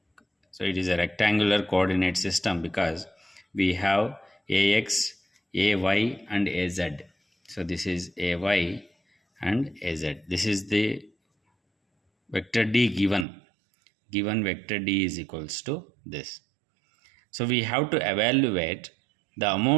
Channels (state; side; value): drops out; left; at 13.2 s